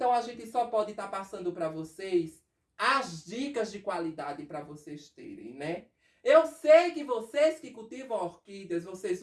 a gente só pode estar passando para vocês as dicas de qualidade para vocês terem, né? Eu sei que vocês que cultivam orquídeas, vocês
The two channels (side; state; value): both; identical; correlation 1.00